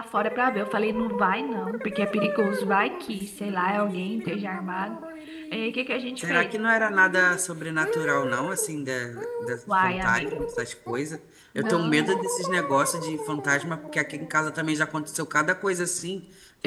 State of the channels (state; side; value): identical; both; correlation 1.00